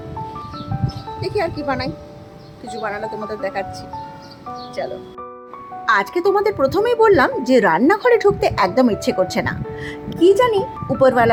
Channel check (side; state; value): both; identical; correlation 1.00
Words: দেখি আর কি বানাই, কিছু বানালে তোমাদের দেখাচ্ছি। চলো, আজকে তোমাদের প্রথমেই বললাম যে রান্নাঘরে ঢুকতে একদম ইচ্ছে করছে না, কি জানি